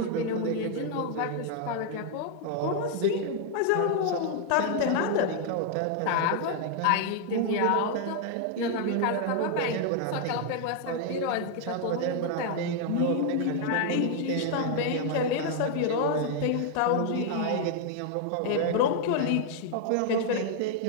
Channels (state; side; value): different; both; correlation 0.00